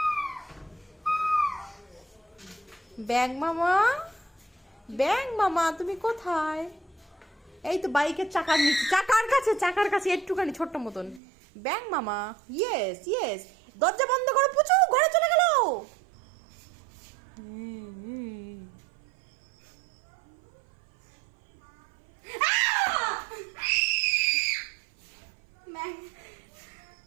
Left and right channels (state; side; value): drops out; left; at 11.2 s